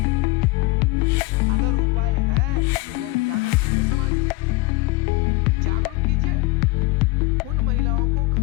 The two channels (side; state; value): right; quieter; 20.7 dB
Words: अगर उपाय है तो वो उजागर कीजिए, समाज में जागरूक कीजिए। उन महिलाओं को